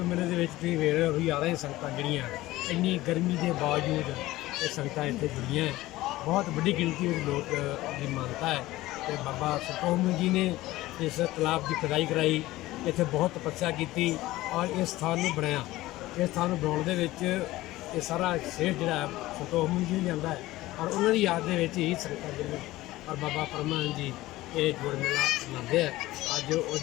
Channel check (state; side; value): quieter; right; 17.4 dB